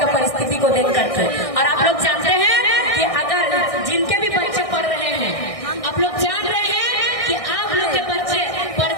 परिस्थिति को देख करके। और आप लोग जानते हैं कि अगर जिनके भी बच्चे पढ़ रहे हैं, आप लोग जान रहे हैं कि आप लोग के बच्चे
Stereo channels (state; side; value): late; right; 1.6 ms